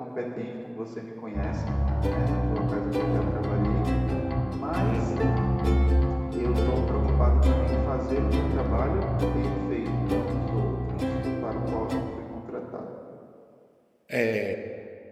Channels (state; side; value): identical; both; correlation 1.00